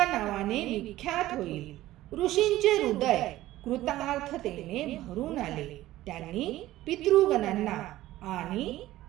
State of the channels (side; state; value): left; quieter; 15.6 dB